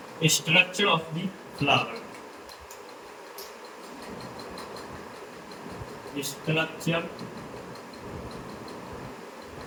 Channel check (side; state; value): both; identical; correlation 1.00